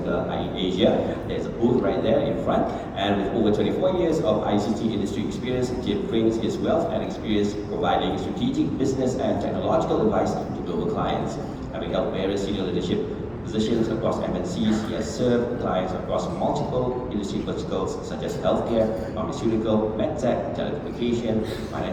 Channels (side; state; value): both; identical; correlation 1.00